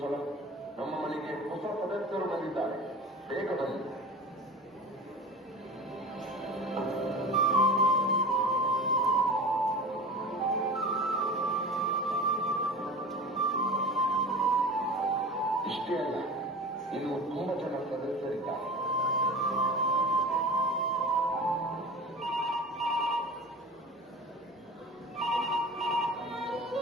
ಸಲ ನಮ್ಮ ಮನೆಗೆ ಹೊಸ ಸದಸ್ಯರು ಬಂದಿದ್ದಾರೆ. ಬೇಗ ಬನ್ನಿ. ಇಷ್ಟೇ ಅಲ್ಲ, ಇನ್ನು ತುಂಬಾ ಜನ ಸದಸ್ಯರಿದ್ದಾರೆ.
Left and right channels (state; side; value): normal; both; correlation 0.34